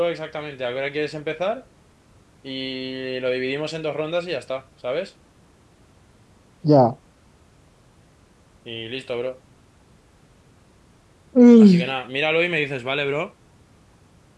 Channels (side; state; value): both; identical; correlation 1.00